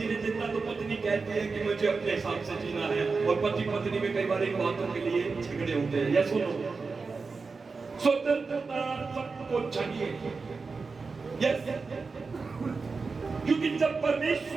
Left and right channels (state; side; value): quieter; left; 4.4 dB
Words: देता तो पत्नी कहती है कि मुझे अपने हिसाब से जीना है, और पति पत्नी में कई बार इन बातों के लिए झगड़े होते हैं। या सुनो, स्वतंत्रता सबको चाहिए, यस, क्योंकि जब